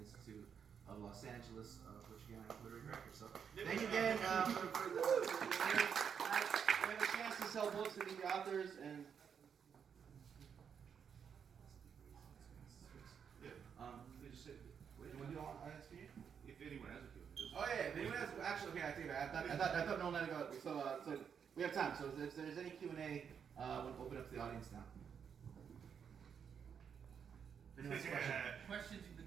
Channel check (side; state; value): left; quieter; 7.3 dB